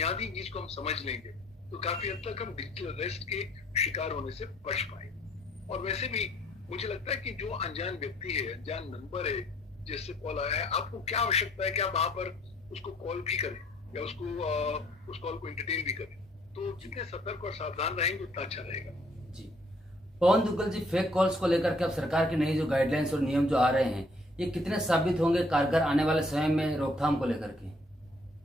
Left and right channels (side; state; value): both; normal; correlation 0.62